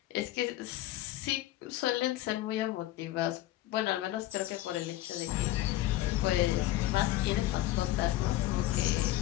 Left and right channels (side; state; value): right; quieter; 15.2 dB